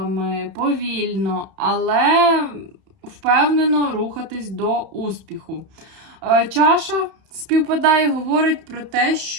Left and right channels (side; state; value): left; late; 31 ms